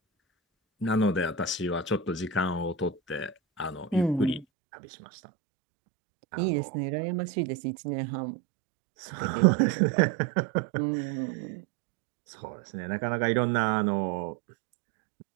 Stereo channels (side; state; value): left; drops out; at 4.5 s